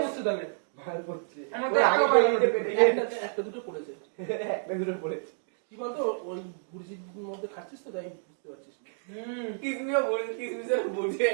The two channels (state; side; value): silent; left; digital silence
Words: করছে তাহলে আমাদের একটা দুটো পড়েছে, একটা দুটো পড়েছে। কি বলতো ওই গুরজির মধ্যে খাচ্ছিস তো তাই বুঝতে পারছিস না। কিসমিও বলছে, কিসমিসের বুঝে